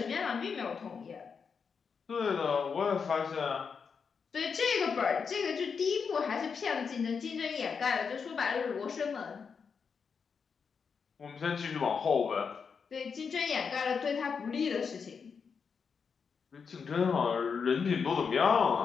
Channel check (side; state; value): right; quieter; 5.9 dB